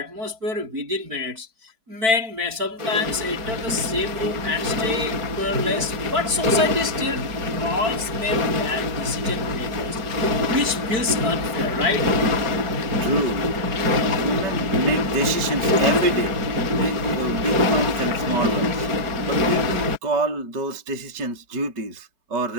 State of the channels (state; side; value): late; left; 4.7 ms